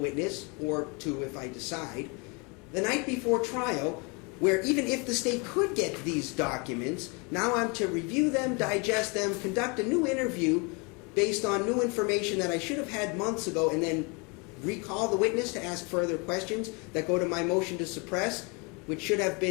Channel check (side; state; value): right; quieter; 31.4 dB